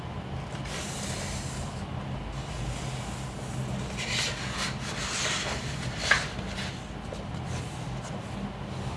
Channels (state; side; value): identical; both; correlation 1.00